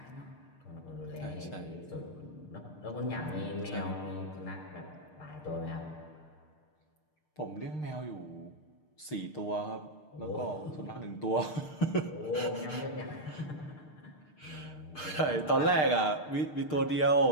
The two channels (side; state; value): right; late; 6.6 ms